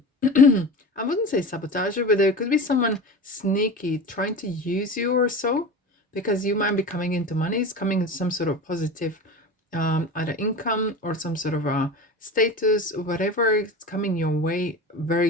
wouldn't say sabotager, but there could be someone sneaky trying to use you or so, because you might be coming into money. It's coming in some sort of positive, either income or some sort of a status, whatever is coming your way.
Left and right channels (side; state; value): both; normal; correlation 0.31